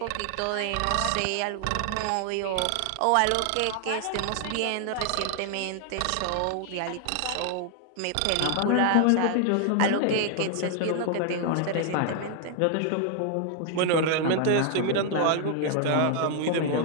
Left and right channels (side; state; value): both; different; correlation 0.00